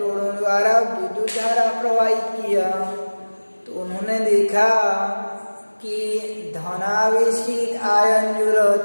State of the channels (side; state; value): both; inverted; correlation -1.00